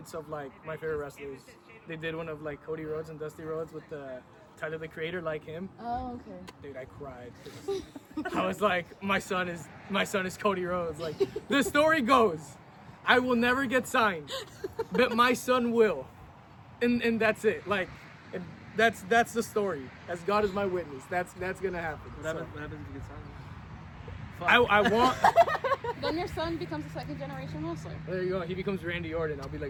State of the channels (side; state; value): both; identical; correlation 1.00